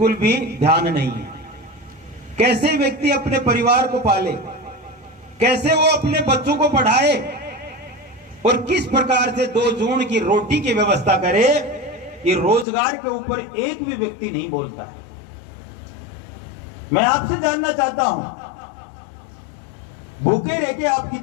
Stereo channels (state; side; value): drops out; right; at 12.7 s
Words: भी ध्यान नहीं है। कैसे व्यक्ति अपने परिवार को पाले, कैसे वो अपने बच्चों को पढ़ाए और किस प्रकार से 2 जून की रोटी की व्यवस्था करे, ये रोजगार के ऊपर एक भी व्यक्ति नहीं बोलता है। मैं आपसे जानना चाहता हूं, भूखे रह के आप